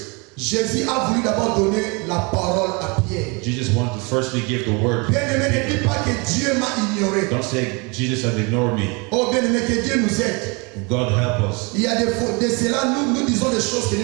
Jésus a voulu d'abord donner la parole à Pierre. Jesus wanted to firstly give the word. Bien aimé, ne dis pas que Dieu m'a ignoré. Don't say Jesus has ignored me. Oh bien aimé, que Dieu nous aide. God help us. Il y a de cela, nous disons des choses que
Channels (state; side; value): quieter; left; 29.5 dB